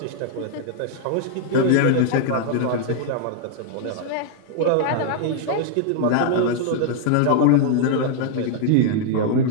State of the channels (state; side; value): different; both; correlation 0.00